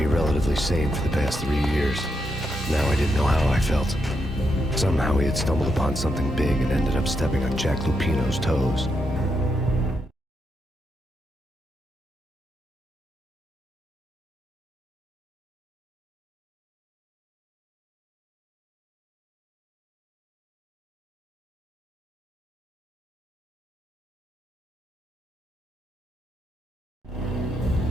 relatively sane for the past 3 years. Now I didn't know how I felt. Somehow he had stumbled upon something big and ended up stepping on Jack Lupino's toes.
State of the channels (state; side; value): normal; both; correlation 0.81